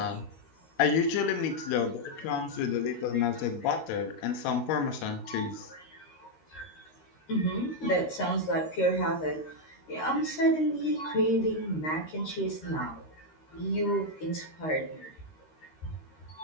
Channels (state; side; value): late; right; 13 ms